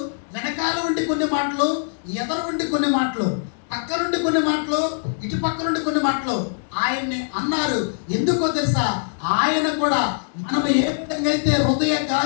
వెనకాల ఉండి కొన్ని మాటలు, ఎదరు ఉండి కొన్ని మాటలు, పక్క నుండి కొన్ని మాటలు, ఇటు పక్క నుండి కొన్ని మాటలు ఆయన్ని అన్నారు. ఎందుకో తెలుసా, ఆయన కూడా మనం ఏ విధంగా అయితే హృదయ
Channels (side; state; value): right; silent; digital silence